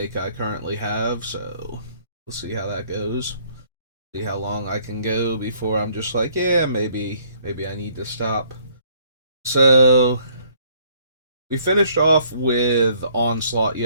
I currently have, so we'll see how that goes. See how long I can go before I'm just like, yeah, maybe I need to stop. So we finished off with Onslaught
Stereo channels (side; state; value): both; inverted; correlation -0.63